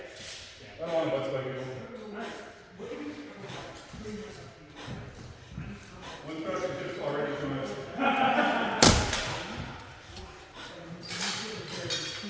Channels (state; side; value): identical; both; correlation 1.00